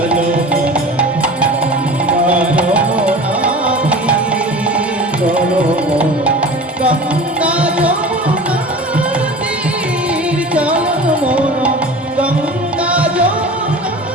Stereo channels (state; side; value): normal; both; correlation 0.37